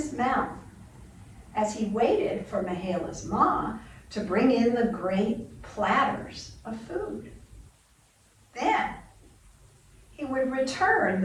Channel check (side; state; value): both; identical; correlation 1.00